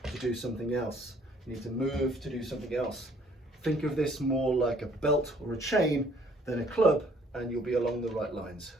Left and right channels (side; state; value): both; normal; correlation 0.60